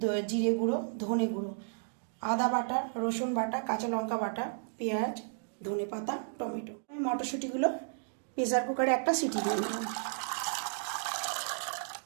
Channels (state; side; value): silent; left; digital silence